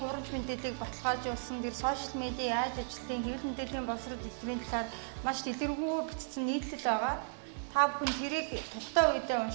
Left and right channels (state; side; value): silent; left; digital silence